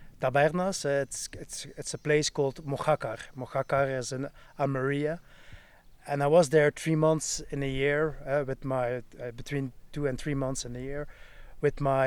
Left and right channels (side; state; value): both; identical; correlation 1.00